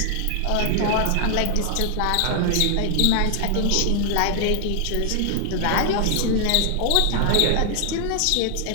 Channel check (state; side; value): different; both; correlation 0.00